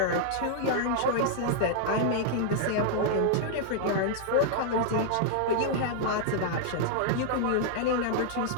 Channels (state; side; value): different; both; correlation -0.01